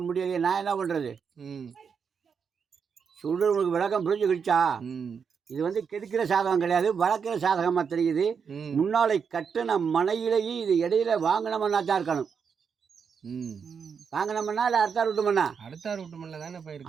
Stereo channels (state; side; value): quieter; left; 6.4 dB